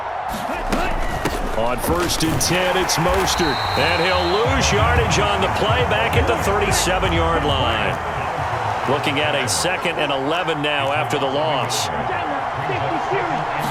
On 1st and 10, it's Mostert. And he'll lose yardage on the play back at the 37-yard line. Looking at a 2nd and 11 now after the loss.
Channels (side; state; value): both; identical; correlation 1.00